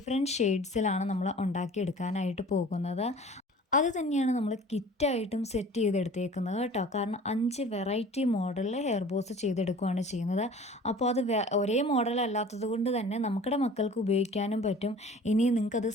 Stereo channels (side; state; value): both; normal; correlation 0.45